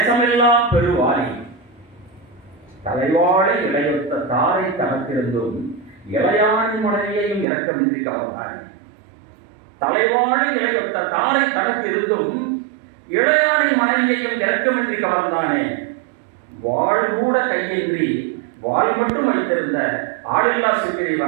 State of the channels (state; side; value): drops out; left; at 7.5 s